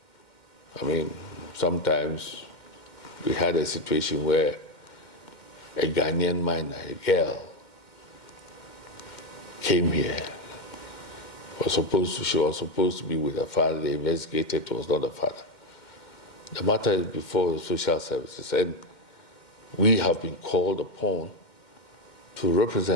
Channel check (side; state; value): right; late; 2.1 ms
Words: I mean, sometimes we had a situation where a Ghanaian minor, a girl, came here. She was supposed to be with her father. They investigated, it was not the father. The matter is before the social services, and we have been called upon to